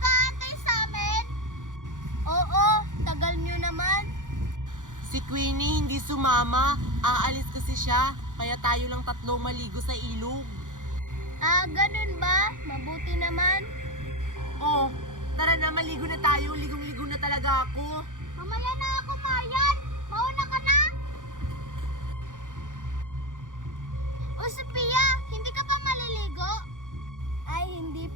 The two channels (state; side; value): late; left; 0.87 ms